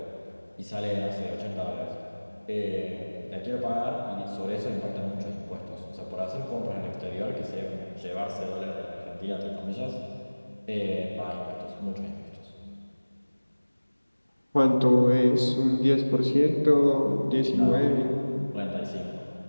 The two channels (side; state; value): both; inverted; correlation -1.00